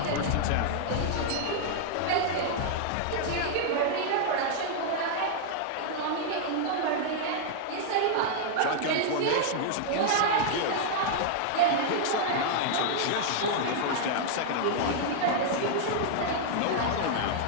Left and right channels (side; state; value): both; different; correlation -0.01